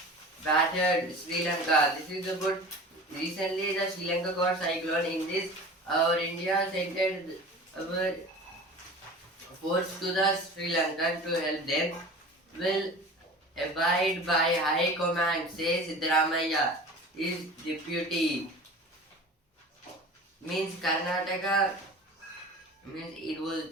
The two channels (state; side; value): normal; both; correlation 0.38